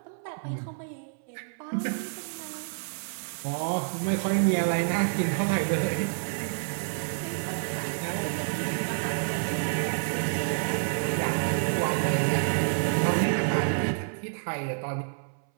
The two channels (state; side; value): silent; left; 59 dB below the other